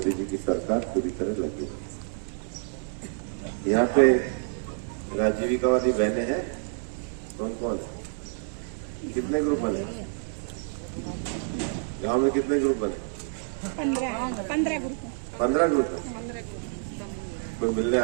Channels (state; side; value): silent; left; 59 dB below the other